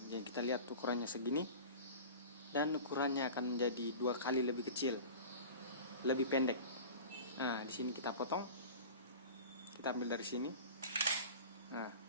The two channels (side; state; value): both; inverted; correlation -0.36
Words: Jadi kita lihat ukurannya segini, dan ukurannya akan menjadi 2 kali lebih kecil, lebih pendek. Nah, di sini kita potong, kita ambil dari sini. Nah,